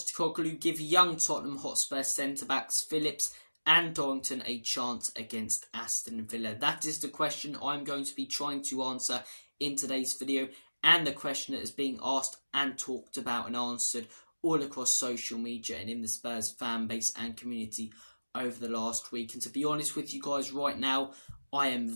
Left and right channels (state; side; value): inverted; both; correlation -1.00